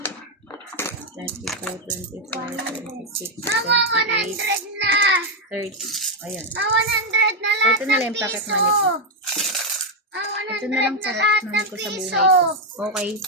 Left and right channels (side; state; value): both; normal; correlation 0.02